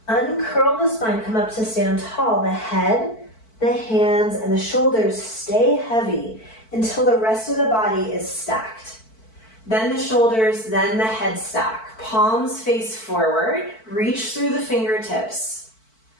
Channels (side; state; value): right; late; 4.5 ms